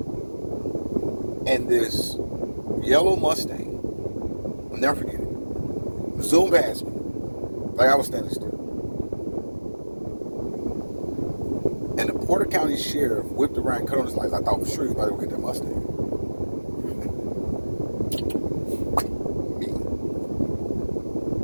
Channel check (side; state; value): both; inverted; correlation -1.00